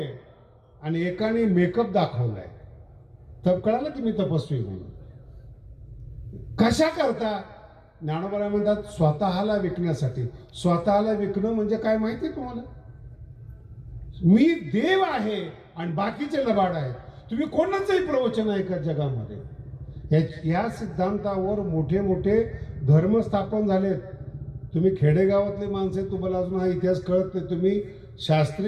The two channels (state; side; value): identical; both; correlation 1.00